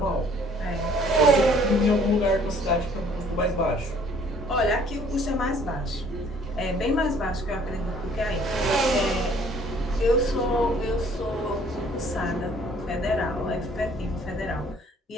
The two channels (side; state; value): both; normal; correlation 0.57